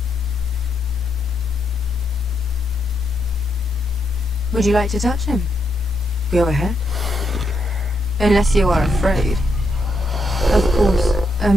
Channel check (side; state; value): both; normal; correlation 0.80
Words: Would you like to touch him? Go ahead. Unless you are afraid. Of course, a